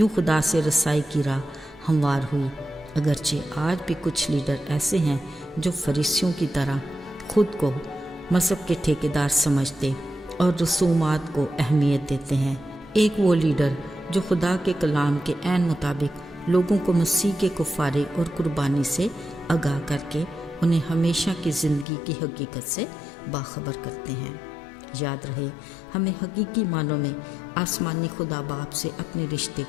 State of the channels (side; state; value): right; drops out; at 21.9 s